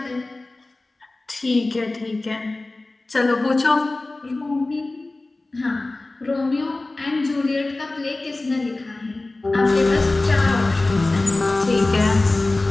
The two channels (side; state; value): right; quieter; 3.0 dB